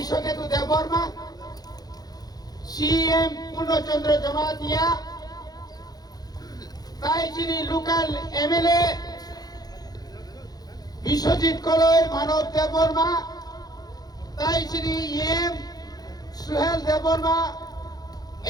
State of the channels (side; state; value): right; late; 0.19 ms